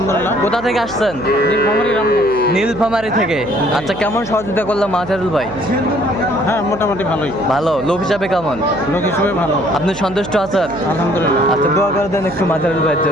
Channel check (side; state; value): right; noise; hum, 15 dB below the sound